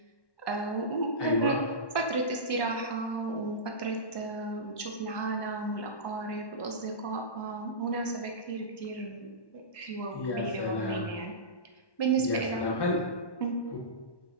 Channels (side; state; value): right; late; 1.1 ms